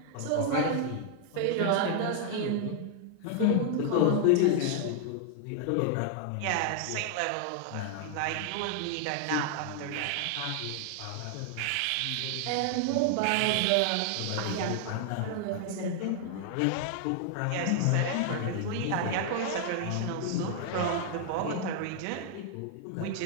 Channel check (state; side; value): different; both; correlation 0.00